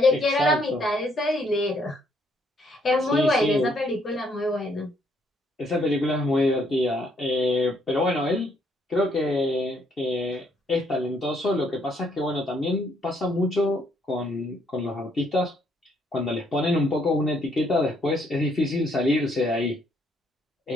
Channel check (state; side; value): normal; both; correlation 0.70